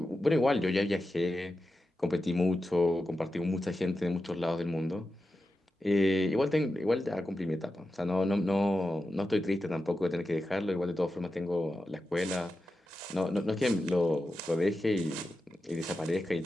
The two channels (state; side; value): normal; both; correlation 0.91